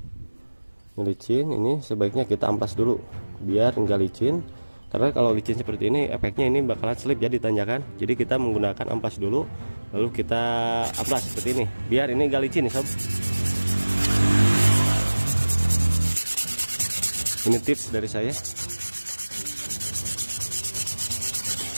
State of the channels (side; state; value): both; inverted; correlation -1.00